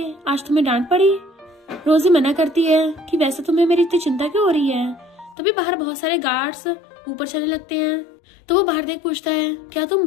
आज तुम्हें डांट पड़ी। रोजी मना करती है कि वैसे तुम्हें मेरी इतनी चिंता क्यों हो रही है। तभी बाहर बहुत सारे गार्ड्स ऊपर चलने लगते हैं, तो वो बाहर देख पूछता है क्या तुम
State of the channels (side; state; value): right; drops out; at 5.4 s